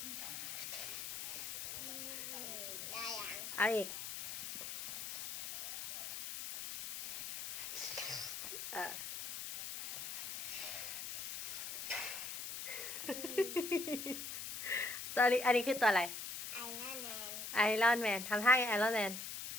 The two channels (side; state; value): left; noise; hiss, 6 dB below the sound